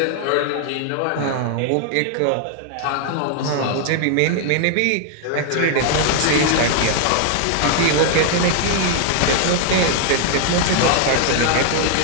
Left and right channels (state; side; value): different; both; correlation 0.00